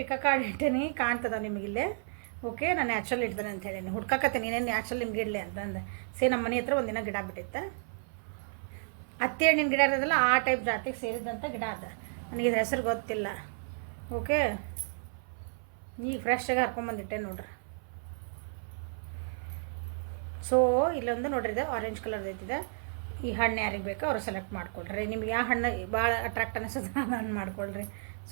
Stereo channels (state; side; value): silent; left; 56 dB below the other